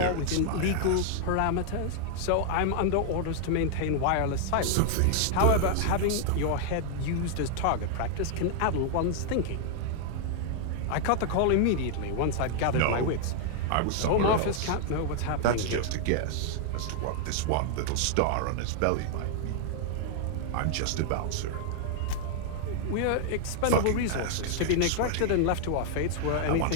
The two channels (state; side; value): different; both; correlation 0.00